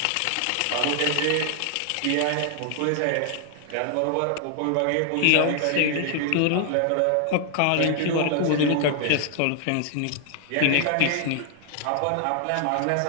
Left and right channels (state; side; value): different; both; correlation 0.00